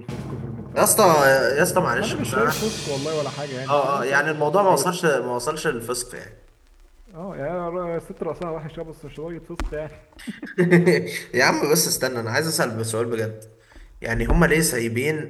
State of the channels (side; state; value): both; identical; correlation 1.00